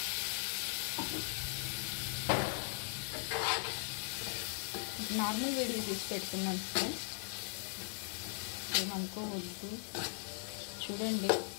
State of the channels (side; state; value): right; silent; 52 dB below the other